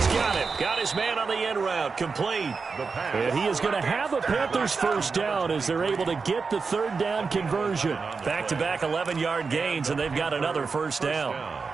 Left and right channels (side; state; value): left; quieter; 4.8 dB